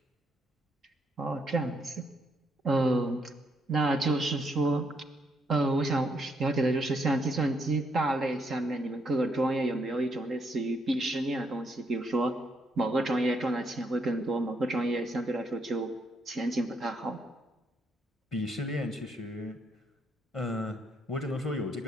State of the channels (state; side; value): normal; both; correlation 0.74